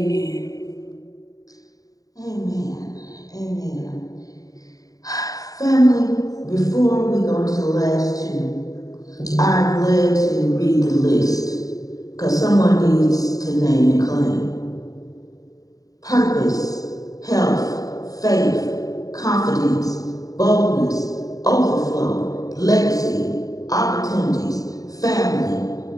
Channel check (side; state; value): right; late; 0.17 ms